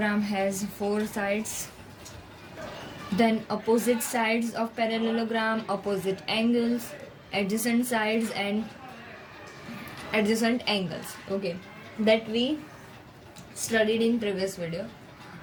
has four sides, then opposite sides of parallelogram, opposite angles, adjacent sides and adjacent angles. Okay, that we studied in previous video.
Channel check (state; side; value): identical; both; correlation 1.00